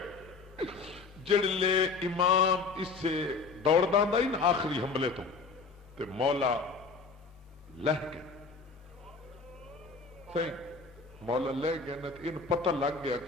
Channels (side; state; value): right; quieter; 4.5 dB